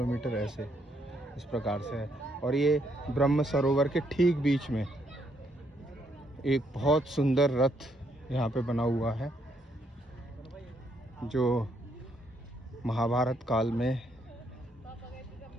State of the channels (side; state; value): both; normal; correlation 0.73